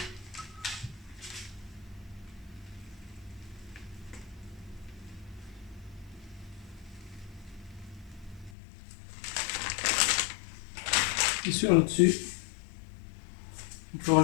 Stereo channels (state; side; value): drops out; right; at 8.5 s